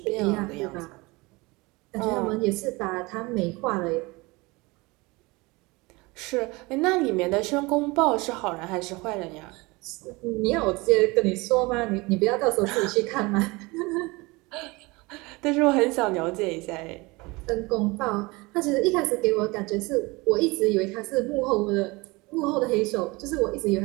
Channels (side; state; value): left; quieter; 24.1 dB